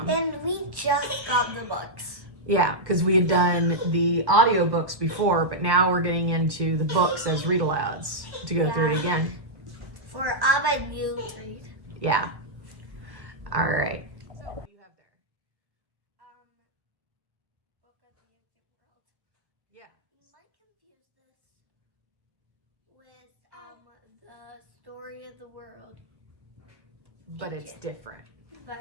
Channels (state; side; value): late; left; 1.3 ms